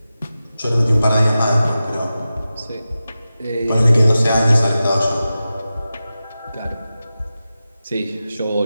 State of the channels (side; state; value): both; inverted; correlation -0.93